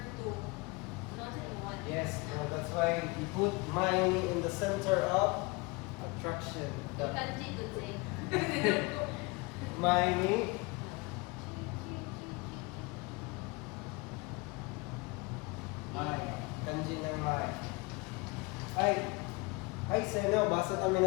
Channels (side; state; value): right; quieter; 26.3 dB